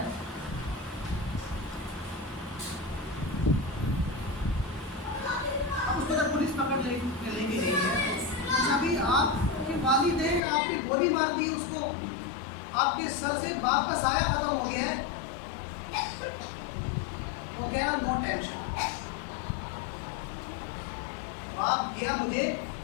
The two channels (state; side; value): drops out; right; at 10.4 s